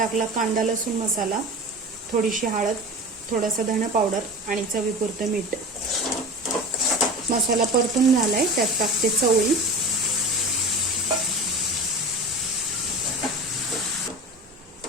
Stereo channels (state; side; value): normal; both; correlation 0.32